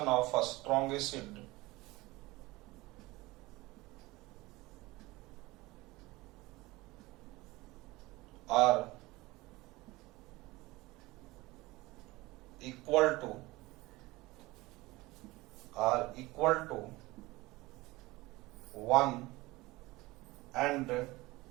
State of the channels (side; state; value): left; quieter; 20.9 dB